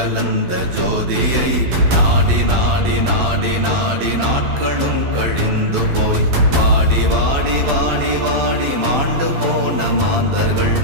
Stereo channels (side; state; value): left; late; 12 ms